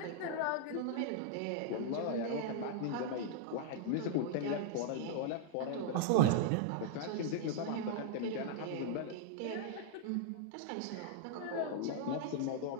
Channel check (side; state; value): both; different; correlation -0.01